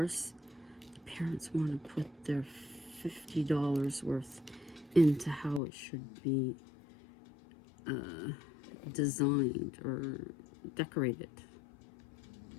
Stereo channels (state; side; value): drops out; right; at 5.6 s